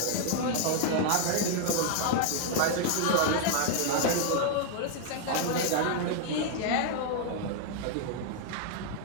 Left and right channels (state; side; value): different; both; correlation 0.00